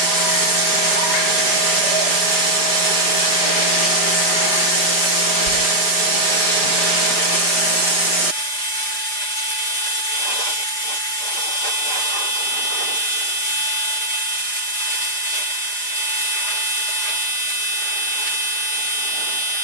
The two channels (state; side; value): late; right; 4.9 ms